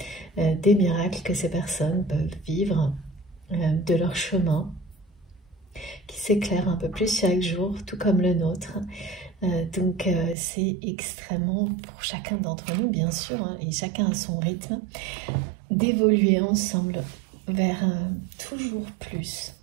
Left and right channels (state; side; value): drops out; left; at 10.4 s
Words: des miracles que ces personnes peuvent vivre, de leur chemin, qui s'éclaire un peu plus chaque jour, tout comme le nôtre. Donc c'est extrêmement, pour chacun d'entre nous, bien sûr, hein, et chacun à son rythme, d'évoluer ensemble vers toujours